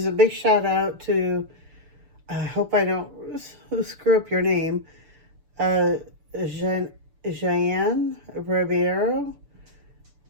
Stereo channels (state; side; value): late; left; 6.9 ms